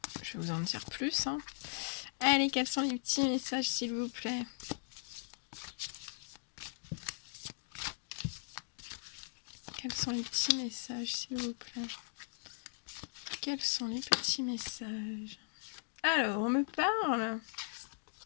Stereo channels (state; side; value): silent; right; digital silence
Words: je vais vous en dire plus. Allez, quels sont les petits messages s'il vous plaît? Quels sont les petits messages s'il vous plaît? Quels sont les petits messages? Alors, on me parle